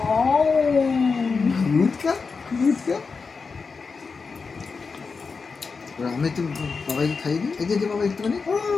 গুড গার্ল, গুড গার্ল। আমি তো বাবাকে খাইয়ে দিই। এই যে বাবা একটুখানি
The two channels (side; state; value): right; quieter; 4.8 dB